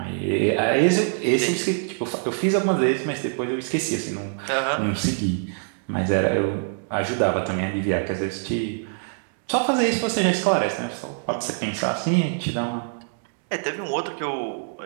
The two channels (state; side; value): silent; left; digital silence